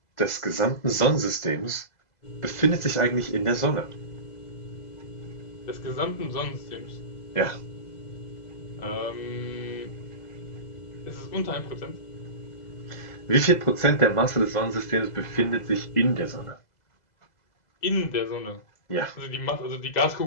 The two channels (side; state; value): right; late; 2.0 ms